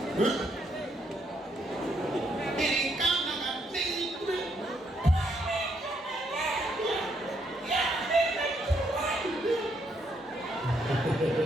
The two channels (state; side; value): normal; both; correlation 0.73